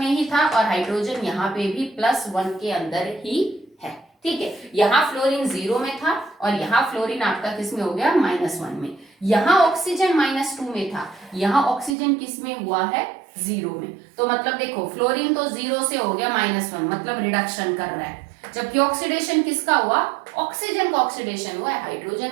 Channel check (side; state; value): left; drops out; at 12.0 s